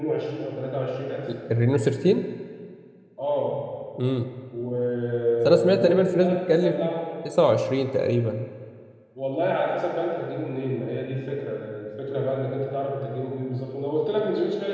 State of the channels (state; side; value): identical; both; correlation 1.00